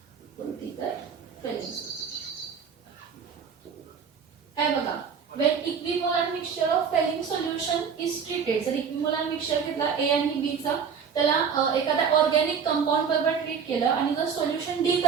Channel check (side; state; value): left; quieter; 6.6 dB